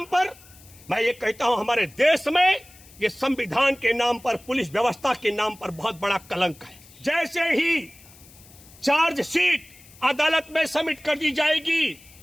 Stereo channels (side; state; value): left; noise; hiss, 23 dB below the sound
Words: पर, मैं ये कहता हूं, हमारे देश में ये संविधान के नाम पर, पुलिस व्यवस्था के नाम पर बहुत बड़ा कलंक है। जैसे ही चार्जशीट अदालत में सबमिट कर दी जाएगी,